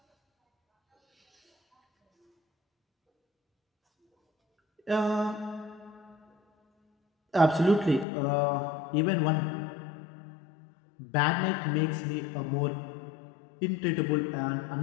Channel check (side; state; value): right; drops out; at 8.1 s